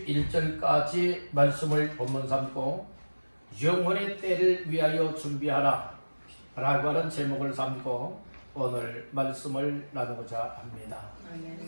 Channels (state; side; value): inverted; both; correlation -1.00